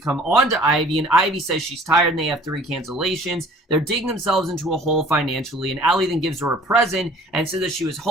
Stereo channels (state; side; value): normal; both; correlation 0.50